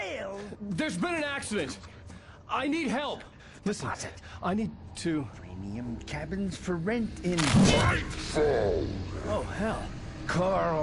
There's been an accident. I need help. Listen, I need to... Premium cabins for rent in... Oh, hell.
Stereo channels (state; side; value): identical; both; correlation 1.00